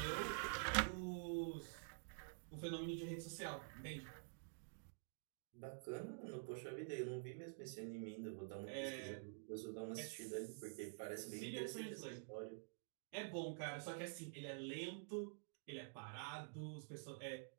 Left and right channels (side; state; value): left; silent; digital silence